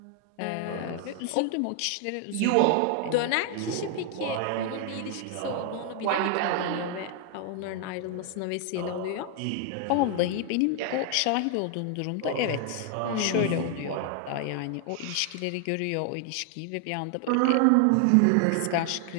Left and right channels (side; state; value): both; different; correlation 0.00